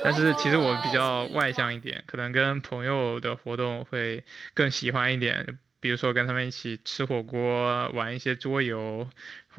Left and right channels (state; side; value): quieter; left; 4.9 dB